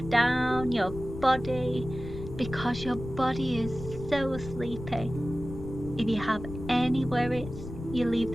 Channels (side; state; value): left; noise; rumble, 10 dB below the sound